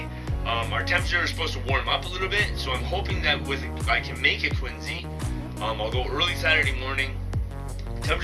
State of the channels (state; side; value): identical; both; correlation 1.00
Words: our temperature is supposed to warm up a little bit, so I'm hoping that I can make it Quincy. I'll go early Saturday morning.